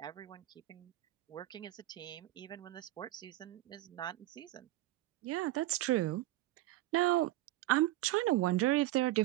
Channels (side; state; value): left; quieter; 16.4 dB